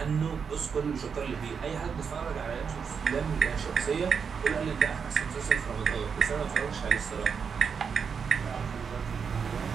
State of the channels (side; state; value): left; quieter; 6.3 dB